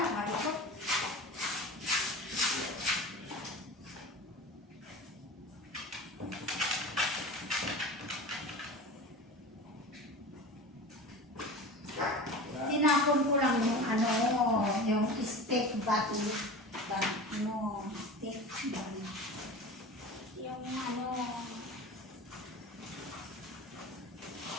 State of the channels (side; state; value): both; normal; correlation 0.33